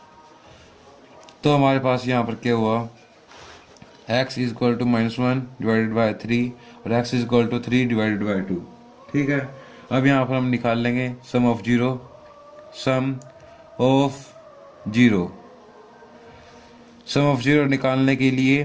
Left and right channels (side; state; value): both; identical; correlation 1.00